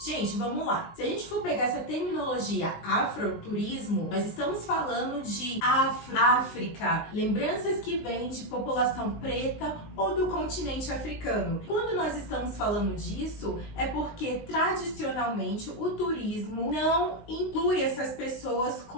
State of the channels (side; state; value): right; late; 20 ms